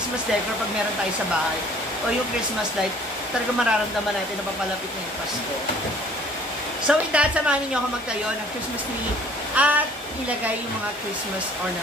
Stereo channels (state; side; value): normal; both; correlation 0.54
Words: decor pag meron tayo sa bahay. O yung Christmas light, talaga mararamdaman natin na papalapit na yung Pasko. So with that, samahan niyo ako magtayo ng Christmas tree at ilagay yung mga Christmas